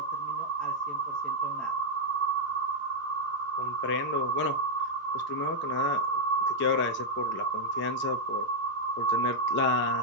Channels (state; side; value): normal; both; correlation -0.02